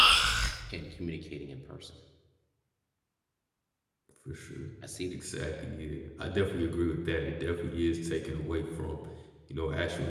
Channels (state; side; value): identical; both; correlation 1.00